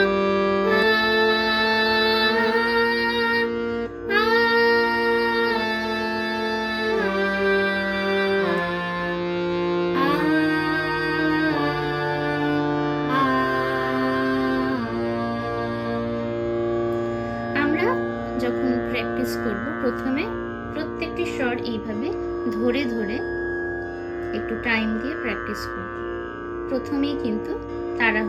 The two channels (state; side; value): identical; both; correlation 1.00